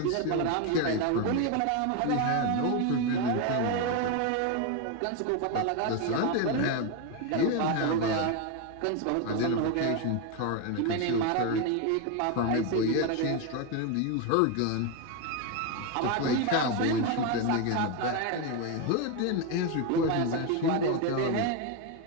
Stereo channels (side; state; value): both; different; correlation 0.02